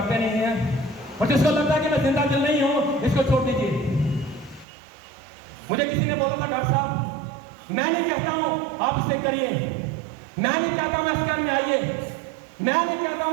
नहीं है। और जिसको लगता है कि मैं जिंदा दिल नहीं हूं, इसको छोड़ दीजिए। मुझे किसी ने बोला था डॉक्टर साहब मैं नहीं कहता हूं आप इसे करिए, मैं नहीं चाहता हूं एस्केआर में आइए, मैं नहीं चाहता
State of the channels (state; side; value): drops out; left; at 4.7 s